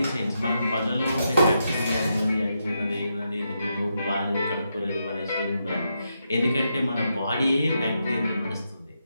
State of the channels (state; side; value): inverted; both; correlation -0.83